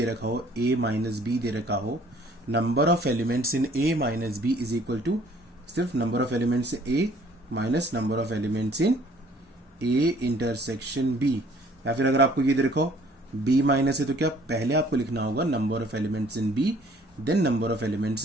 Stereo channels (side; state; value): both; normal; correlation 0.58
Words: रखा हो a माइनस बी दे रखा हो, number of elements in a minus B is equal to सिर्फ number of elements a minus number of elements in a intersection b। या फिर अगर आपको ये दे रखा हो b माइनस है तो क्या पहले आपको लिखना होगा number of elements in b then number of